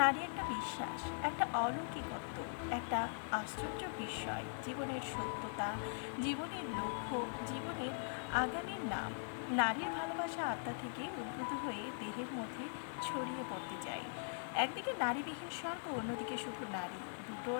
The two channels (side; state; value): right; silent; digital silence